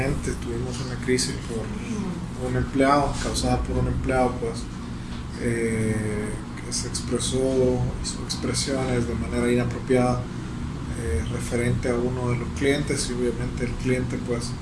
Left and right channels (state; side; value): identical; both; correlation 1.00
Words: tuvimos una crisis por un empleado, causada por un empleado pues, que se expresó, hizo expresiones de manera inapropiada referente a uno de los clientes y obviamente el cliente pues